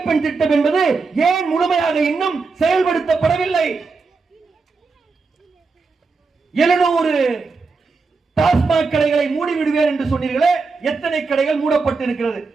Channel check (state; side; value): quieter; left; 4.3 dB